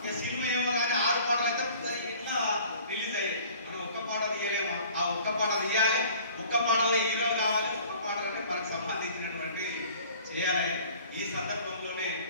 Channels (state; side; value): inverted; both; correlation -0.49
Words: ఇక సినిమా ఏమో కానీ 6 పాటలు అయితే ఇట్లా రిలీజ్ అయ్యాయి. మనం ఒక్క పాట తీయలేమా? ఆ ఒక్క పాట తీయాలి, ఒక్క పాటలో హీరో కావాలి, ఒక్క పాటలోనే మనకు సంబంధించినటువంటి చేయాలి. ఈ సందర్భంలోనే